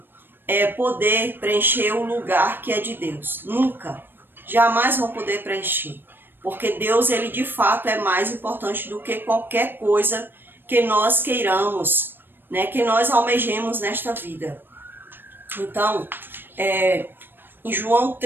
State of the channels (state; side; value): late; left; 0.096 ms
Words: poder preencher o lugar que é de Deus. Nunca. Jamais vão poder preencher. Porque Deus, ele de fato é mais importante do que qualquer coisa que nós queiramos, né? Que nós almejemos nesta vida. Então, em João